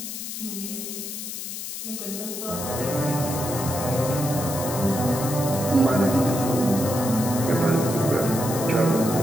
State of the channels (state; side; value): noise; left; hiss, 7 dB below the sound